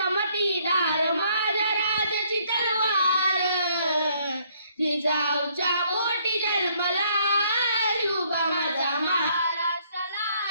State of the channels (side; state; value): both; inverted; correlation -0.66